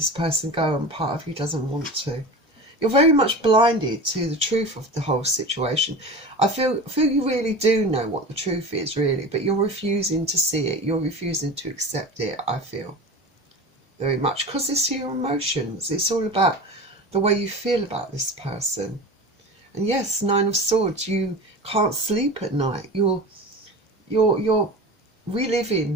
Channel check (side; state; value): both; normal; correlation 0.32